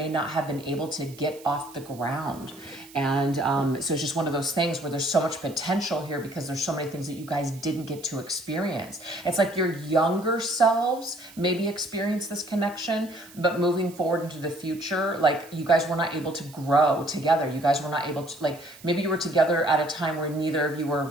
not have been able to get off the ground. And so it's just one of those things where there's so much potential here because there's so many things that you guys didn't get to experience. It's like your younger selves maybe experience this connection, but moving forward into the future, like you guys were not able to grow together. You guys were not able to, like, maybe you were together at a time where neither of you were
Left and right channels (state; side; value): noise; right; hiss, 21 dB below the sound